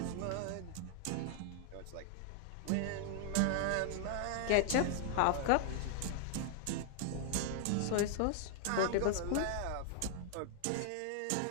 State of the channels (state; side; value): different; both; correlation 0.00